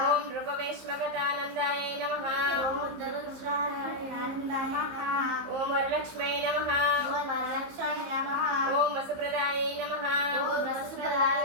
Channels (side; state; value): left; late; 15 ms